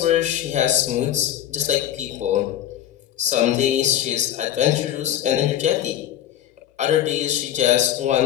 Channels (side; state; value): right; quieter; 11.3 dB